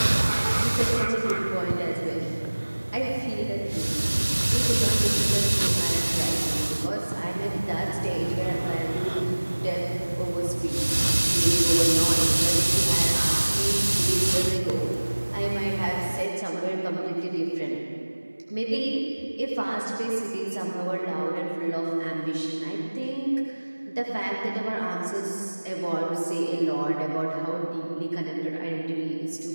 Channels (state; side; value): inverted; both; correlation -1.00